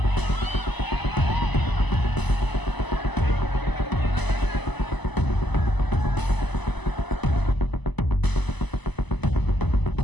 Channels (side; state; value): right; late; 1.0 ms